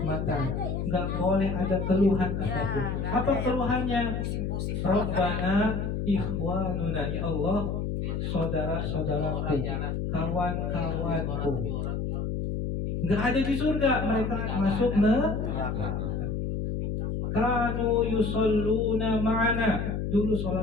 nggak boleh ada keluhan apapun. Apa keluhannya? Rabbana ikhwanuna, ya Allah, saudara-saudaraku, kawan-kawanku. Nggak ada di surga, mereka masuk neraka. Kanu yusalluna ma'ana, dulu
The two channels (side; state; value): left; noise; hum, 2 dB below the sound